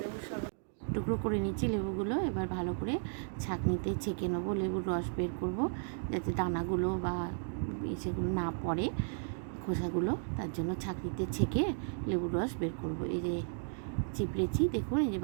শরবত। টুকরো করে নিচ্ছি লেবুগুলো, এবার ভালো করে ছাঁকনিতে ছেঁকে নেবো। লেবুর রস বের করব যাতে দানাগুলো বা সেগুলো না পড়ে, খোসাগুলো। তার জন্য ছাঁকনিতে ছেঁকে লেবুর রস বের করব। এই যে চিপড়েছি, দেখুন এই যে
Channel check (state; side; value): silent; left; digital silence